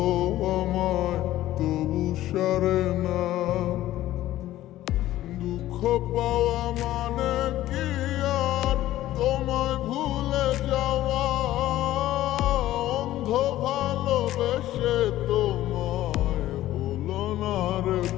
আমায়, তবু সারে না। দুঃখ পাওয়া মানে কি আর তোমায় ভুলে যাওয়া? অন্ধ ভালোবেসে তোমায় হলো না রে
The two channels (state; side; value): quieter; right; 14.6 dB